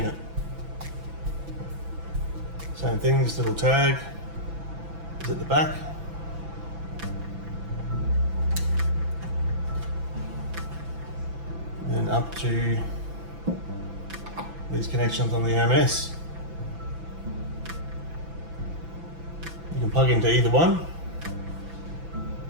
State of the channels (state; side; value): late; left; 6.0 ms